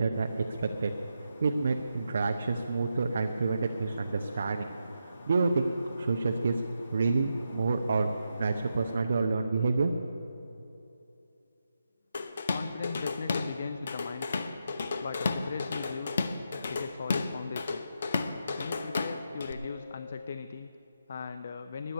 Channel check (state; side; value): inverted; both; correlation -0.85